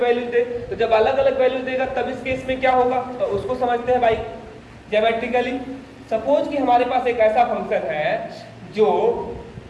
वैल्यू दे। तो जब अलग अलग वैल्यू देगा तब इस केस में क्या होगा, तो उसको समझते हैं भाई ज्योमेट्रिकली। सपोज कि हमारे पास एक ऐसा फंक्शन है जो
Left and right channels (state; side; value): identical; both; correlation 1.00